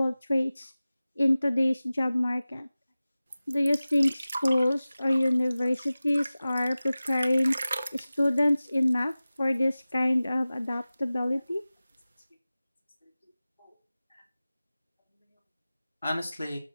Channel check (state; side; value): inverted; both; correlation -0.97